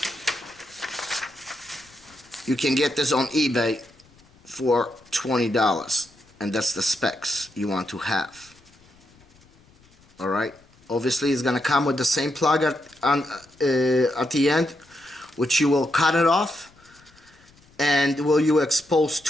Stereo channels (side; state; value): left; noise; rumble, 30 dB below the sound